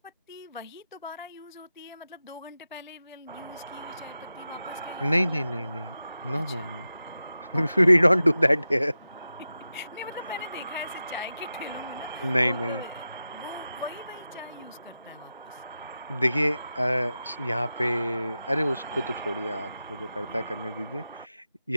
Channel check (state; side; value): inverted; both; correlation -0.92